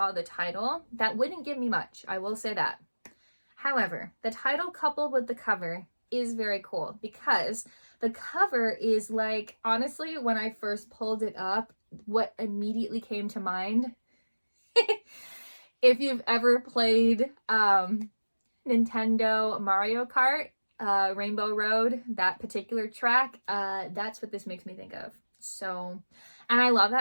the title, that wouldn't give me much. I will say that. However, the title coupled with the cover is very cool because the cover is like, honestly, when I first pulled it up, what immediately came to mind, if you've ever played Nintendo Mario Kart, Rainbow Road, that particular track, that's what this makes me think of. So, and I love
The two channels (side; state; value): both; inverted; correlation -1.00